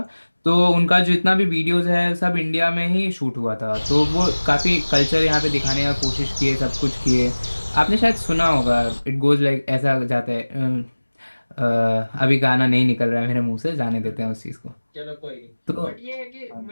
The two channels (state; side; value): inverted; both; correlation -1.00